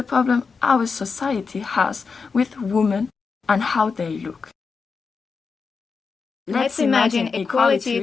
problem our society has with women and how they look. Let's imagine equality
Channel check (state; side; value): quieter; right; 5.1 dB